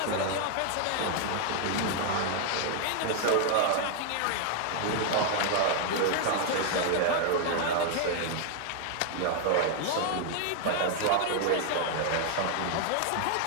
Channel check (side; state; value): both; different; correlation 0.00